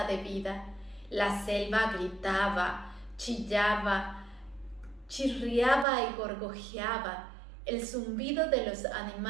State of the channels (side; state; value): left; drops out; at 5.9 s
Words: de vida. La selva gritaba, chillaba, chirriaba y gorgojeaba. El zumbido de los